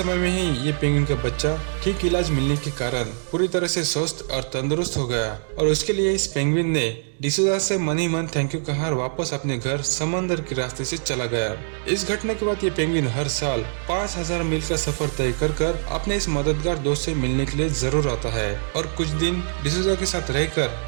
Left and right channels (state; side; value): silent; left; digital silence